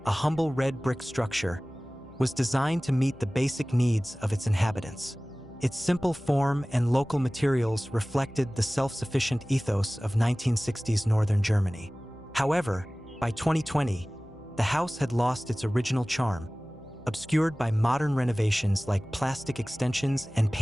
a humble red brick structure, was designed to meet the basic needs of its inhabitants. Its simple form and local materials reflected the self-sufficient ethos of 1960s northern Germany. However, by 2020, the house had lost its original charm, obscured by modern renovations like plastic extensions and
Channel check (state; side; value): noise; left; hum, 23 dB below the sound